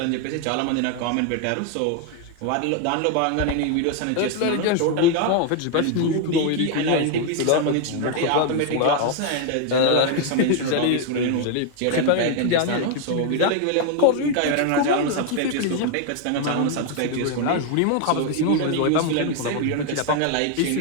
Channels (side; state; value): both; different; correlation 0.01